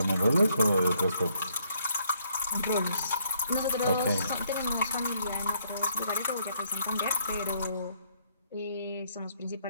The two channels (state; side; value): inverted; both; correlation -0.70